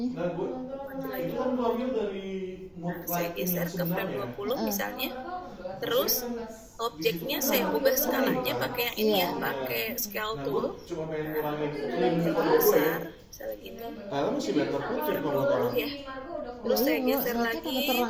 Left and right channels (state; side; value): identical; both; correlation 1.00